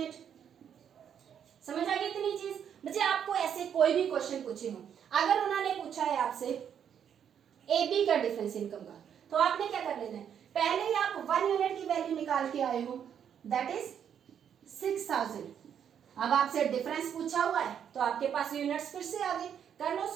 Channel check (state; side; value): quieter; left; 8.5 dB